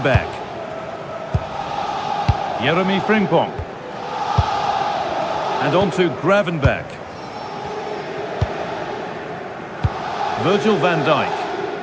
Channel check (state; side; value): identical; both; correlation 1.00